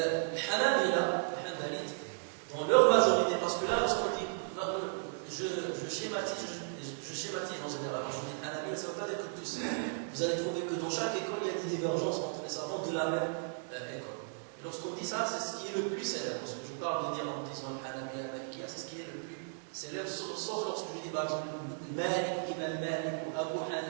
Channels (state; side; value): silent; left; digital silence